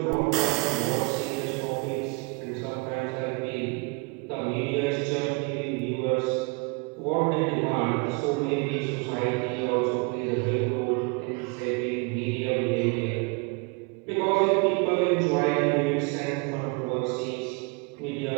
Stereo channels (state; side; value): quieter; left; 30.0 dB